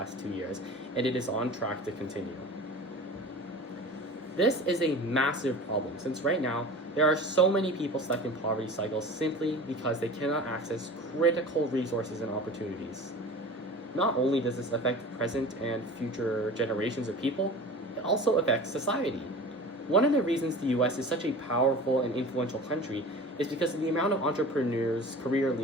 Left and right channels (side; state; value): both; normal; correlation 0.37